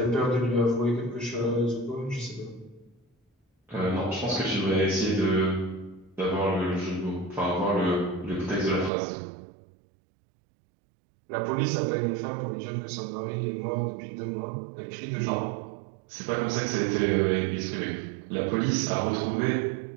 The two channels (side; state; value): left; drops out; at 8.9 s